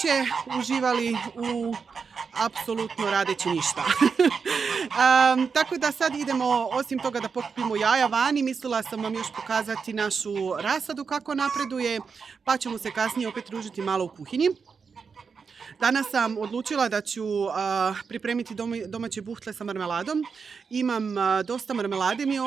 uživali u apsolutno radeći ništa. Tako da sad idemo, osim toga da pokupimo jaja vani, mislila sam vam još pokazati našu rasadu kako napreduje, pa ćemo se kasnije opet družiti malo u kuhinji. Danas sam odlučila da ću pripremiti domaće buhtle sa marmeladom. Imam dosta marmelade mi je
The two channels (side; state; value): left; quieter; 5.6 dB